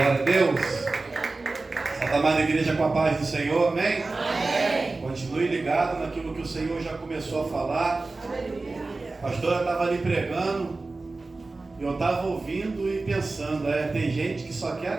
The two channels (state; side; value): quieter; left; 3.5 dB